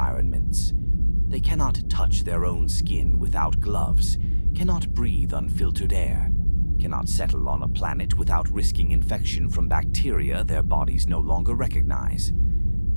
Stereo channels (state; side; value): inverted; both; correlation -1.00